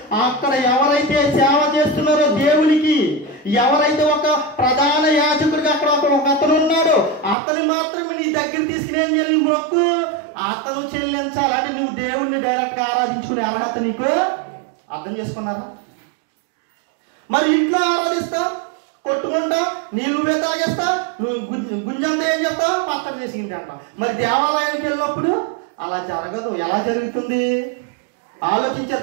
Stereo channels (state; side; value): drops out; left; at 7.4 s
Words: అక్కడ ఎవరైతే సేవ చేస్తున్నారో దేవునికి, ఎవరైతే ఒక ప్రధాన యాజకుడికి అక్కడ ఒక అతను ఉన్నాడో అతను మాత్రమే నీ దగ్గర తీసుకుని ఏం చేయాలి? నీ మొక్కు అతను చెల్లించాలి. అంటే నువ్వు దేవుణ్ణి డైరెక్ట్ గా ఆరాధించుకునే అర్హత నీకు. అర్థం చేసుకున్నారా? మరి ఇంట్లో ఆరాధిస్తావు, కొట్టుకుంటావు, నువ్వే తాగేస్తావు, నువ్వు గుంజంతా ఏం చేస్తావు? పచ్చడి చేసింది అంటావు. మరి దేవాలయానికి వెళ్ళినప్పుడు అలా జరగదు. ఎలా జరుగుతుంది? ఆలోచించే